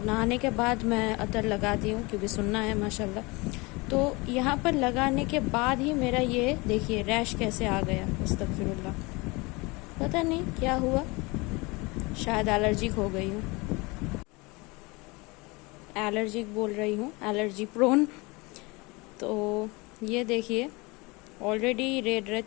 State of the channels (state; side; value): quieter; right; 25.6 dB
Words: नहाने के बाद मैं अतर लगाती हूँ क्योंकि सुनना है माशाल्लाह। तो यहाँ पर लगाने के बाद ही मेरा ये देखिए रैश कैसे आ गया। अस्तगफिरुल्लाह, पता नहीं क्या हुआ, शायद एलर्जिक हो गई हूँ। एलर्जिक बोल रही हूँ, एलर्जी प्रोन। तो ये देखिए ऑलरेडी रेड रेड